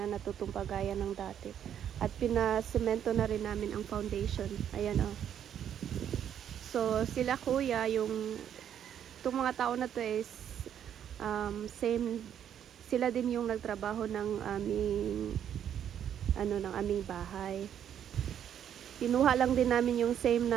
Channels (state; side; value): quieter; left; 9.5 dB